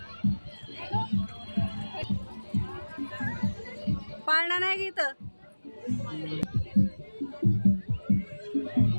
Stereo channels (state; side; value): inverted; both; correlation -1.00